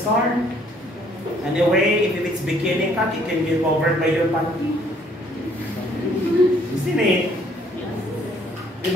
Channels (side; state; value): both; normal; correlation 0.63